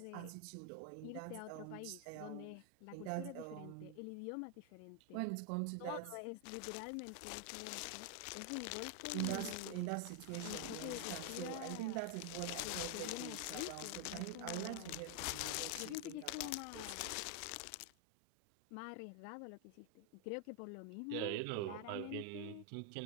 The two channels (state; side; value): different; both; correlation 0.00